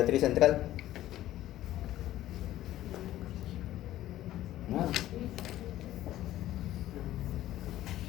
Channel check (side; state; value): right; quieter; 14.1 dB